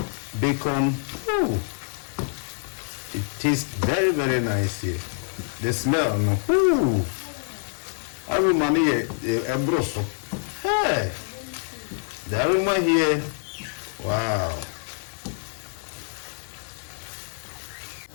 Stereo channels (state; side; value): silent; right; digital silence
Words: bacon, it tastes very, very nice here. The smell, no? Aroma here, a brosso. Hey, the aroma here, wow.